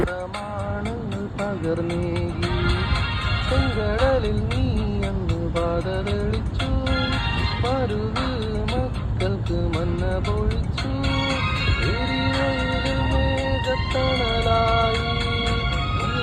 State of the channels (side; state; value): both; identical; correlation 1.00